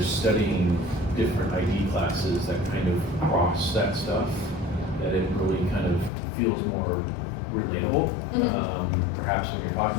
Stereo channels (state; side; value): drops out; right; at 6.1 s